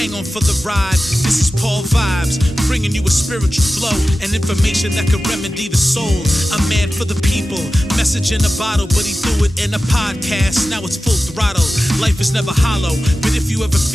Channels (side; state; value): both; normal; correlation 0.94